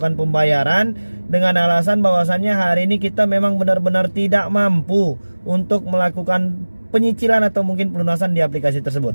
pembayaran dengan alasan bahwasannya hari ini kita memang benar-benar tidak mampu untuk melakukan penyicilan atau mungkin pelunasan di aplikasi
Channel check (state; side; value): inverted; both; correlation -1.00